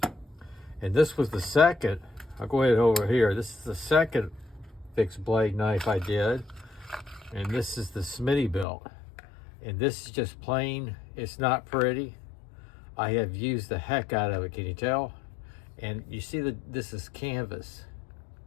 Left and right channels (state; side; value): drops out; right; at 8.7 s